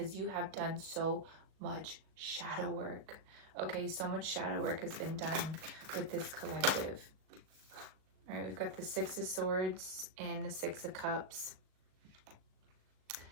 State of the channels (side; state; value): left; late; 38 ms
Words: you have done so much shadow work. Okay, so much shadow work has been done with this collective. All right, we've got the Six of Swords and the Six of Cups.